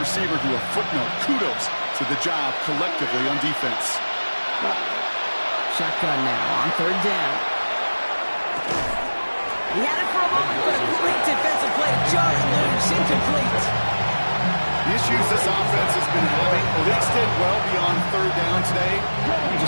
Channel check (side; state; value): both; inverted; correlation -1.00